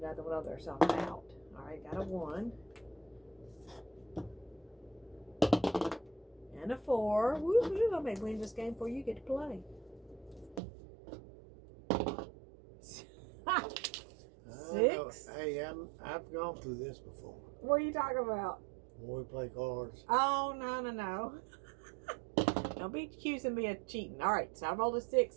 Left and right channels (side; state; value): left; drops out; at 10.6 s